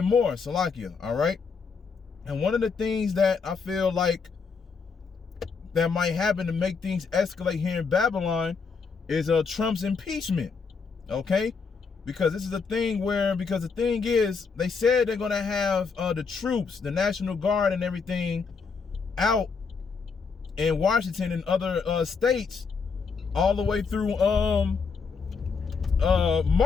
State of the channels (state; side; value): quieter; right; 5.2 dB